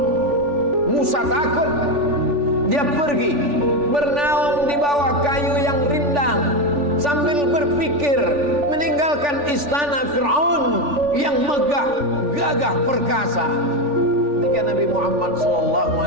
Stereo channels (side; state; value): left; late; 3.4 ms